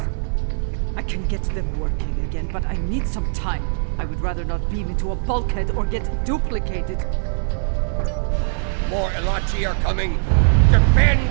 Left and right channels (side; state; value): left; silent; 65 dB below the other